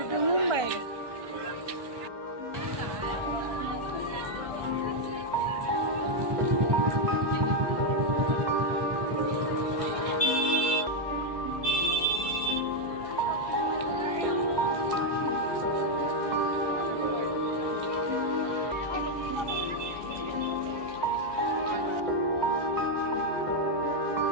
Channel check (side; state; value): left; late; 1.2 ms